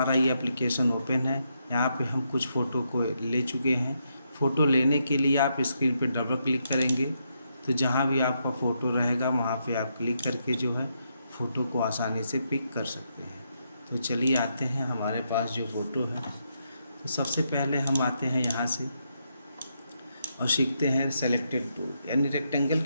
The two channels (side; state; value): both; inverted; correlation -0.80